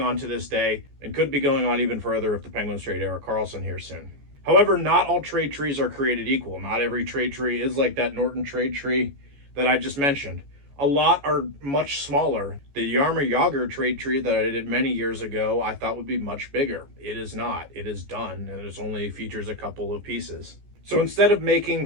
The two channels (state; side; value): late; left; 14 ms